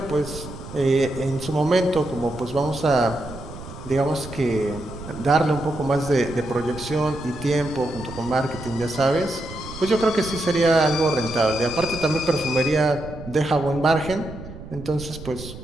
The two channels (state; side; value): noise; right; rumble, 13 dB below the sound